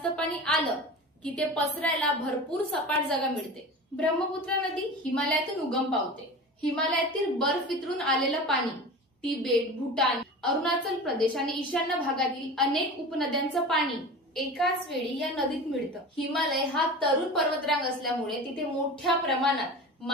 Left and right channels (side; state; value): both; normal; correlation 0.33